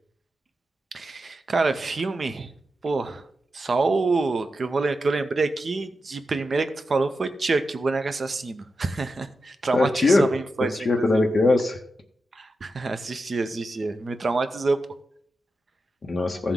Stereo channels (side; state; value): both; normal; correlation 0.89